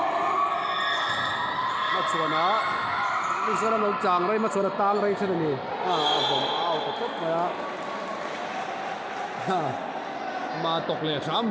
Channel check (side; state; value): both; identical; correlation 1.00